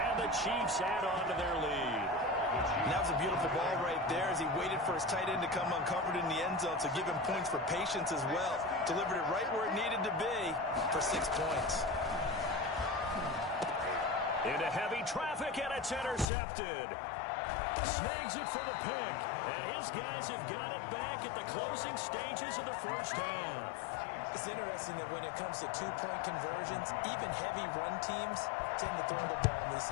the Chiefs add on to their lead. And that was a beautiful ball right there as he waited for his tight end to come uncovered in the end zone to give him points for patience as well. Delivered it right where it needed to be for 6 points. Into heavy traffic, and it's intercepted. Snags it for the pick, and his guys have got it back at the closing stages of the first half. It's interesting that when it comes to two-point conversions, even heavy run teams tend to throw the ball in these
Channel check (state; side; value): drops out; right; at 16.2 s